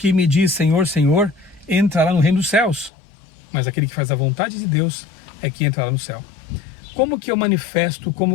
me diz Senhor, Senhor, entrará no reino dos céus, mas aquele que faz a vontade de Deus é que entrará no céu. Como que eu manifesto,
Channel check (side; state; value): right; drops out; at 2.9 s